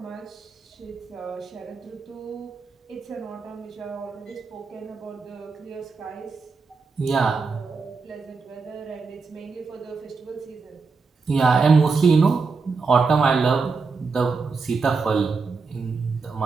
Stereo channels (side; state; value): left; quieter; 4.6 dB